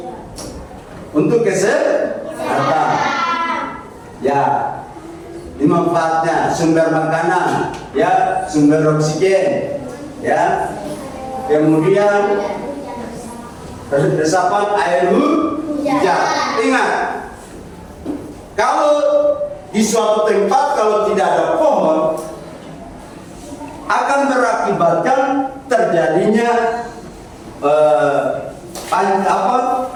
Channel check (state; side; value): identical; both; correlation 1.00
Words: Untuk kesehatan. Ya, ini manfaatnya sumber makanan, ya, sumber oksigen, ya. Kemudian resapan air hujan. Ingat, kalau di suatu tempat kalau tidak ada pohon akan berakibatkan terjadinya